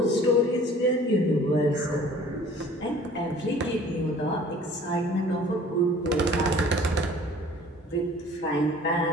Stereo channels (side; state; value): both; normal; correlation 0.50